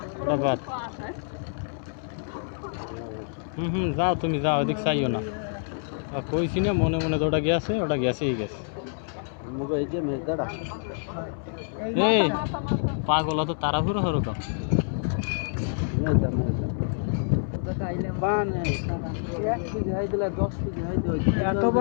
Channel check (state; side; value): silent; right; 60 dB below the other